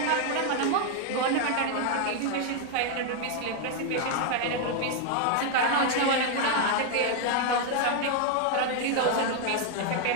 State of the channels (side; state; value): both; different; correlation 0.00